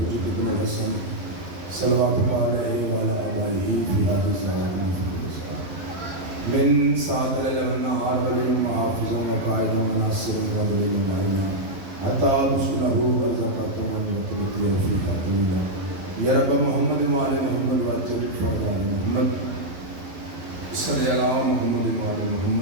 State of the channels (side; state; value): left; late; 11 ms